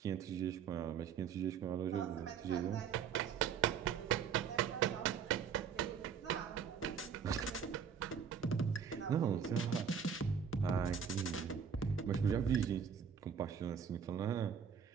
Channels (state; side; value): quieter; left; 7.1 dB